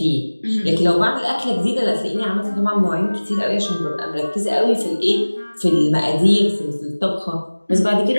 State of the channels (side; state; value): both; inverted; correlation -1.00